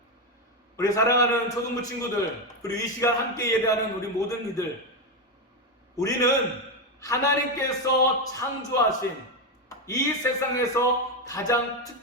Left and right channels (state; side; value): normal; both; correlation 0.09